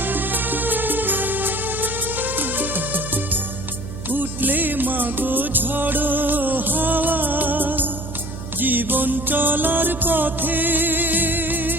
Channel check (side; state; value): right; noise; hum, 9 dB below the sound